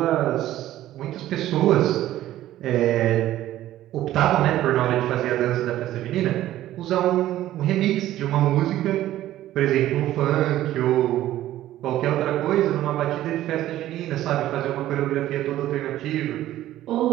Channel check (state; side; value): quieter; left; 13.8 dB